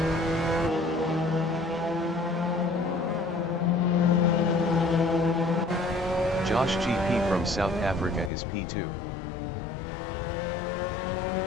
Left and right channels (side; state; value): right; drops out; at 8.3 s